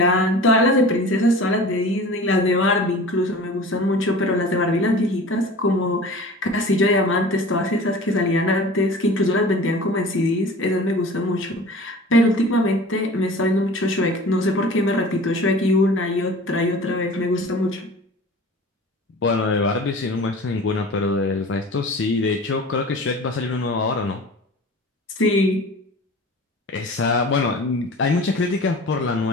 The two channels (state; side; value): normal; both; correlation 0.40